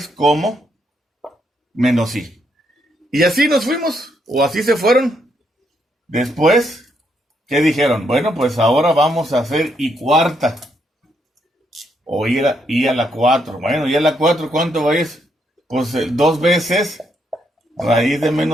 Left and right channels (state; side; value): normal; both; correlation 0.76